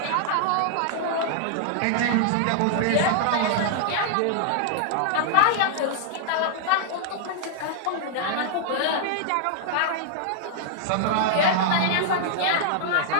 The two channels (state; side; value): different; both; correlation -0.01